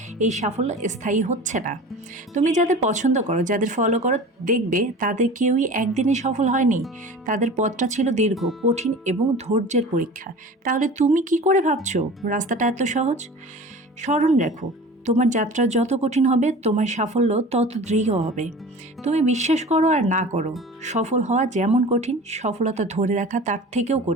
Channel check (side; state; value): both; normal; correlation 0.38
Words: এই সাফল্য স্থায়ী হচ্ছে না। তুমি যাদের পছন্দ করো, যাদের ফলো করো, দেখবে তাদের কেউই একদিনে সফল হয়নি। তাদের পথটা ছিল দীর্ঘ, কঠিন এবং ধৈর্যের পরীক্ষা। তাহলে তুমি কি করে ভাবছো রাস্তাটা এত সহজ? স্মরণ রাখো, তোমার যাত্রা যত কঠিন হবে তোমার সাফল্য তত দৃঢ় হবে। তুমি বিশ্বাস করো আর না করো, সফল হওয়া যেমন কঠিন, সফলতা ধরে রাখা তার থেকেও